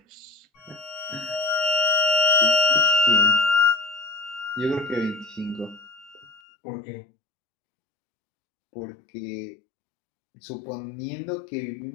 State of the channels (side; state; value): right; drops out; at 6.4 s